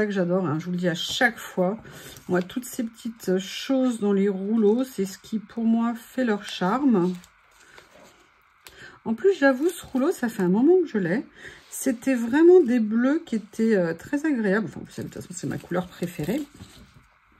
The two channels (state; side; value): identical; both; correlation 1.00